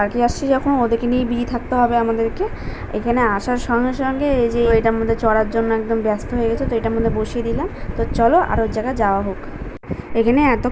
আসছি যখন, ওদেরকে নিয়ে বিজি থাকতে হবে আমাদেরকে। এখানে আসার সঙ্গে সঙ্গে এই যে এটার মধ্যে চড়ার জন্য একদম ব্যস্ত হয়ে গেছে, তো এটার মধ্যে বসিয়ে দিলাম। তো চলো আর ওর জায়গায় যাওয়া হোক। এখানে এত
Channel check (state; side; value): identical; both; correlation 1.00